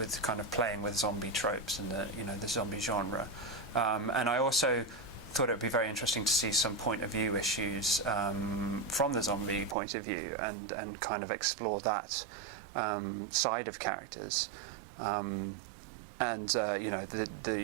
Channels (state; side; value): drops out; left; at 9.8 s